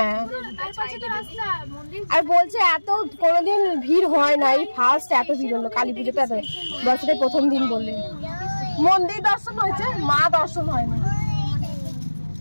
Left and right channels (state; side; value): inverted; both; correlation -1.00